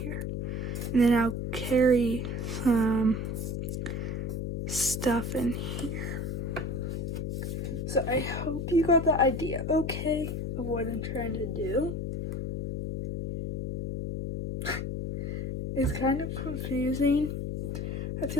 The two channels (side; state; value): left; noise; hum, 3 dB below the sound